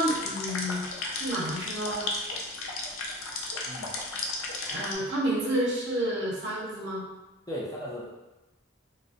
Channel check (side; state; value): both; normal; correlation 0.36